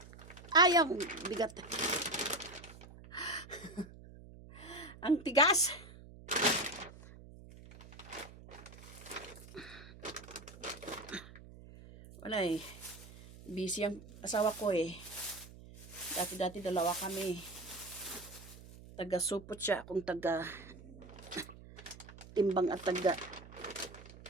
Ayang bigat. Ang tigas. Wala eh. Busy ang asawa ko eh. Dati-dati 2 kami. taga-supot siya, akong taga-timbang at taga-presyo.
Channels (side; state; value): right; noise; hum, 17 dB below the sound